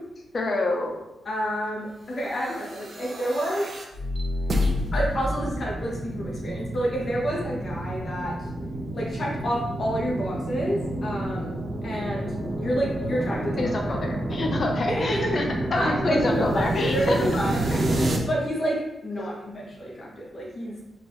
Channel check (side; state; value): both; normal; correlation 0.86